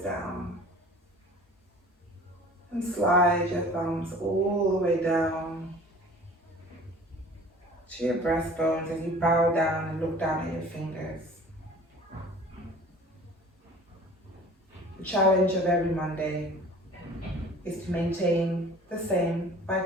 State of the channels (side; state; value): both; normal; correlation 0.46